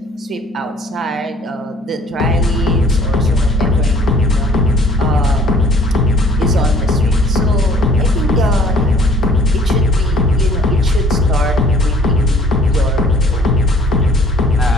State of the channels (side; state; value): both; normal; correlation 0.56